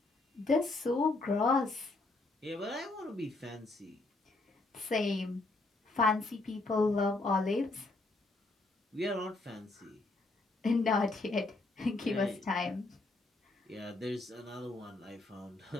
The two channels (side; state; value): right; quieter; 3.1 dB